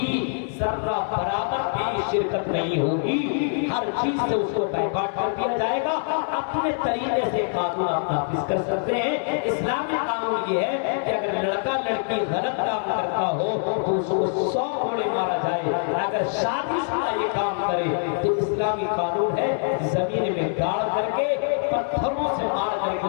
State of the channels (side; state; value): right; silent; digital silence